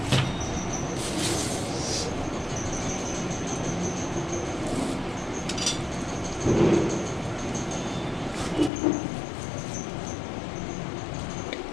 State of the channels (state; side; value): drops out; right; at 8.7 s